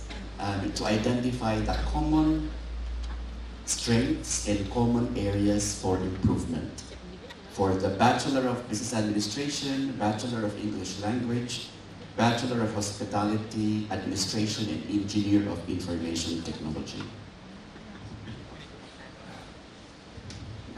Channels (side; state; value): both; identical; correlation 1.00